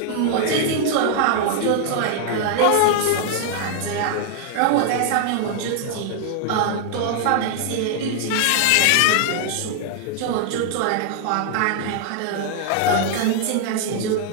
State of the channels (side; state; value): both; different; correlation 0.00